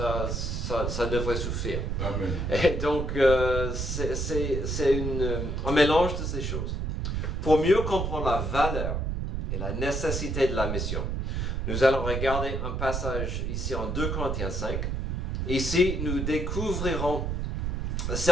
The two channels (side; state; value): right; noise; rumble, 1 dB below the sound